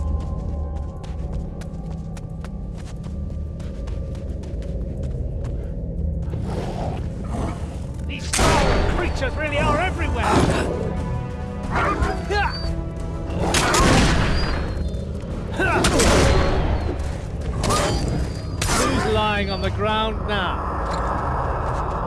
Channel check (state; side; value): identical; both; correlation 1.00